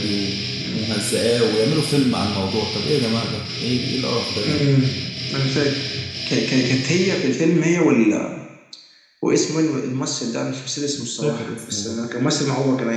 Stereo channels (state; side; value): identical; both; correlation 1.00